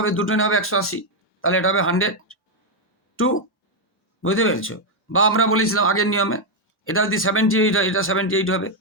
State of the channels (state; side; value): normal; both; correlation 0.01